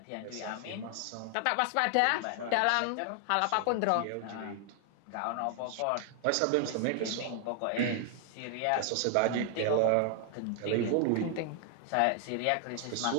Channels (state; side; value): different; both; correlation 0.00